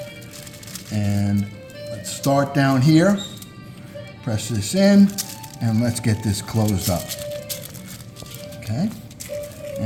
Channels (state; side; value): identical; both; correlation 1.00